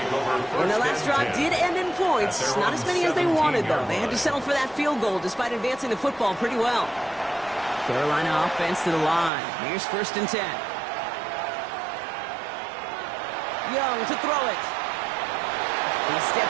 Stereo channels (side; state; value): left; drops out; at 9.3 s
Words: And the last drive did end in points. Not as many as they wanted, though. They had to settle for that field goal despite advancing the football pretty well. Carolina offense to the line. Here's 1st and 10. Young to throw it. He's